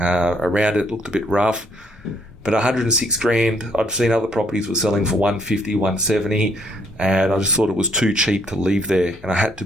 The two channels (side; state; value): both; normal; correlation 0.68